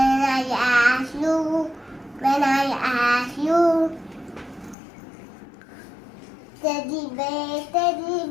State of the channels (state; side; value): drops out; right; at 4.8 s